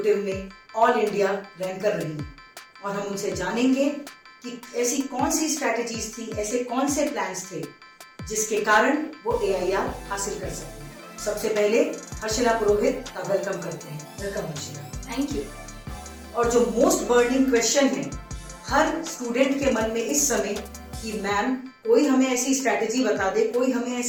में ऑल इंडिया रैंक कर रही हैं, और हम उनसे जानेंगे कि ऐसी कौन सी स्ट्रैटेजीज थी, ऐसे कौन से प्लान्स थे जिसके कारण वो एआईआर हासिल कर सकते हैं। सबसे पहले हर्षिला पुरोहित का वेलकम करते हैं। वेलकम हर्षिला। Thank you. और जो मोस्ट बर्निंग क्वेश्चन है हर स्टूडेंट के मन में इस समय कि मैम कोई हमें ऐसी स्ट्रैटेजी बता दे, कोई हमें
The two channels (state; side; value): identical; both; correlation 1.00